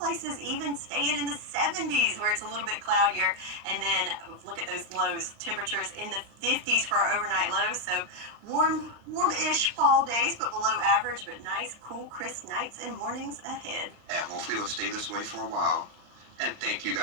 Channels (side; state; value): left; late; 39 ms